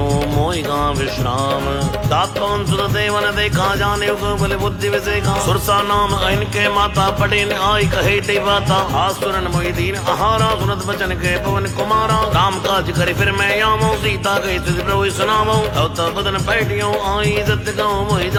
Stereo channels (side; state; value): both; identical; correlation 1.00